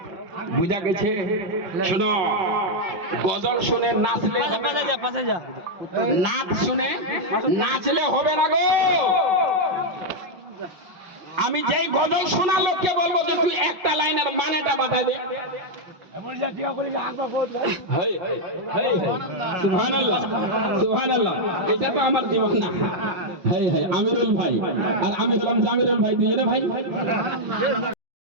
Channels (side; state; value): left; late; 5.7 ms